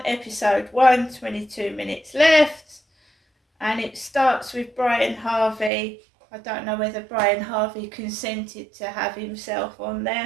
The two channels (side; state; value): left; drops out; at 5.7 s